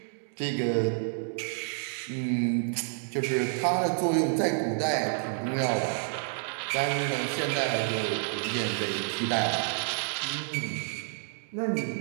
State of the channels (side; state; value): left; silent; digital silence